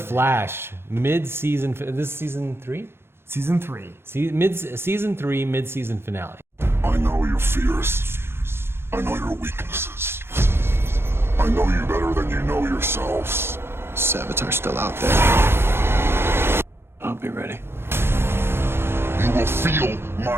mid-season, this is season 3? Season 3. Season 3, mid-season finale. I know your fears. I know your weaknesses. I know you better than you know yourselves. Savatar's still out there. I'll be ready. You will feel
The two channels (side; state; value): left; late; 0.11 ms